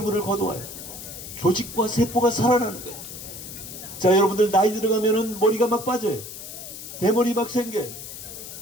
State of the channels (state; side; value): noise; left; hiss, 11 dB below the sound